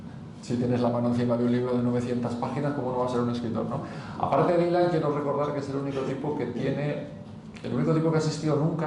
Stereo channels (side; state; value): both; identical; correlation 1.00